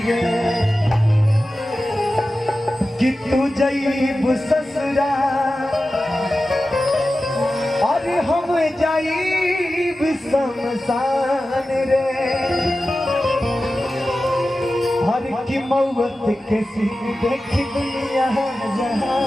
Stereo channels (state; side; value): normal; both; correlation 0.94